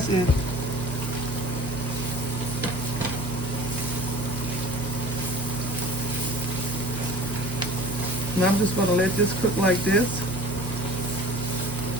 it. Now I'm just going to let this cook like this.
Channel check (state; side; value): normal; both; correlation 0.44